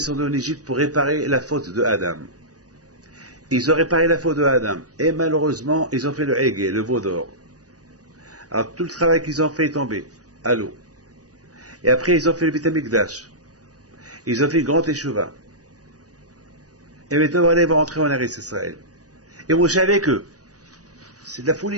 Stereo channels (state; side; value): late; left; 0.67 ms